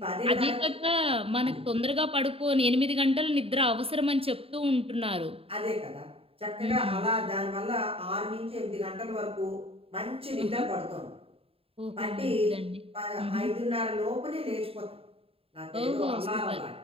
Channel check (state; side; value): late; left; 0.27 ms